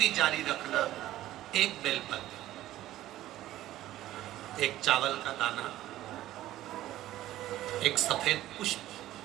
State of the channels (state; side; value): quieter; left; 14.5 dB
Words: जारी रखना। एक बेलपत्र एक चावल का दाना, एक सफेद पुष्प,